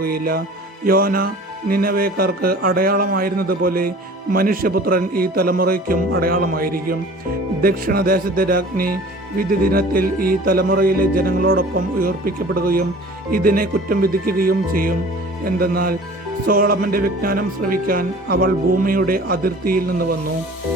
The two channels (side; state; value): both; normal; correlation 0.45